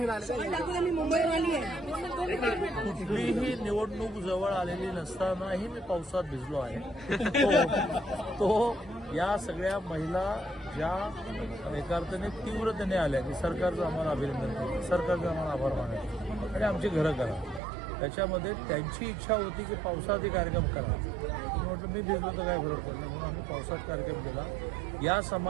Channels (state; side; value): drops out; left; at 17.6 s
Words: कुठलीही निवडणूक जवळ आलेली नसतानाही मी पावसात भिजलो आहे। तो या सगळ्या महिला ज्या एका अर्थाने तीव्रतेने आल्या की सरकारचं आम्हाला अभिनंदन करतो, सरकारचं आम्हाला आभार मानतो आणि आमची घरं करा। त्याच्यामध्ये त्यांची इच्छा होती की पावसात कार्यक्रम करा। मी म्हटलं मी भिजलो तर काय फरक पडला, म्हणून आम्ही पावसात कार्यक्रम केला। या